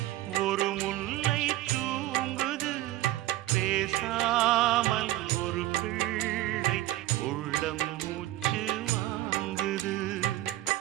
ஒரு முல்லை தூங்குது பேசாமல் ஒரு பிள்ளை உள்ளம் மூச்சு வாங்குது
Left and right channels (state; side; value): quieter; left; 15.6 dB